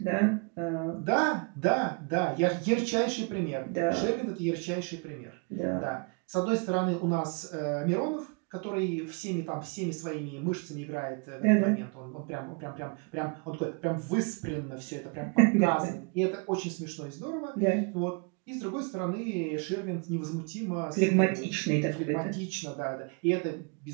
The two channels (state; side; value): quieter; left; 34.2 dB